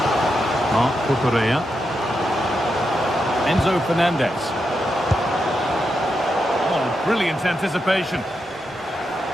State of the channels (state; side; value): normal; both; correlation 0.85